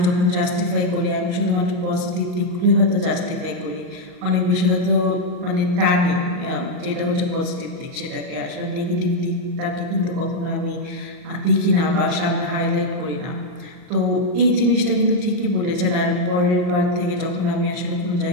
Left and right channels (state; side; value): late; left; 38 ms